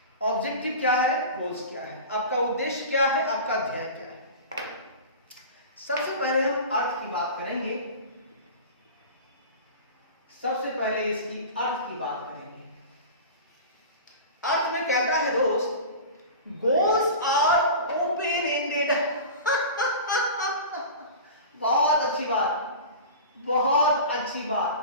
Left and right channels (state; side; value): inverted; both; correlation -0.33